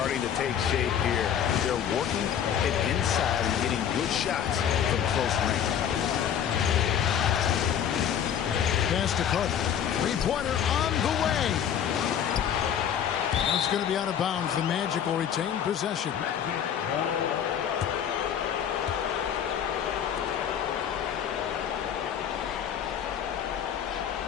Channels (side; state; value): right; quieter; 9.0 dB